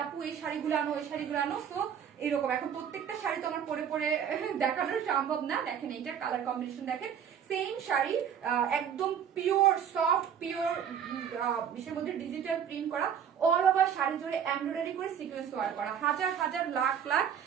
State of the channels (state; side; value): quieter; left; 8.4 dB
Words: আপু এই শাড়িগুলো আনো, ওই শাড়িগুলো আনো, তো এরকম এখন প্রত্যেকটা শাড়ি তো আমার পরে পরে দেখানো সম্ভব না। দেখেন এইটার কালার কম্বিনেশন দেখেন, সেম শাড়ি একদম পিওর সফট পিওর বিষয়ের মধ্যে ডিজিটাল প্রিন্ট করা, অল ওভার শাড়ি জুড়ে এমব্রয়ডারি করে সিকোয়েন্স ওয়ার্ক করা, হাজার হাজার লাখ লাখ